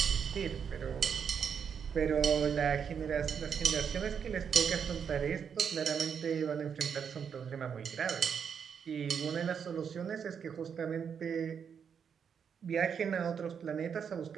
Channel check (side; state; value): left; quieter; 7.2 dB